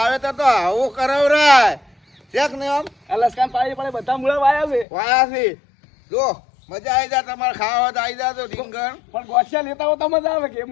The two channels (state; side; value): drops out; right; at 4.9 s